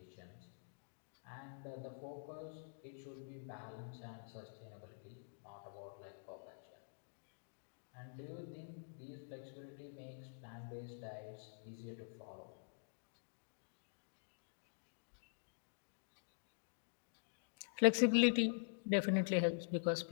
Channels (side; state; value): right; silent; digital silence